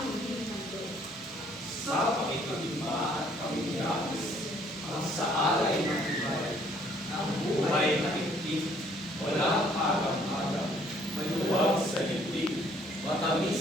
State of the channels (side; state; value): both; normal; correlation 0.62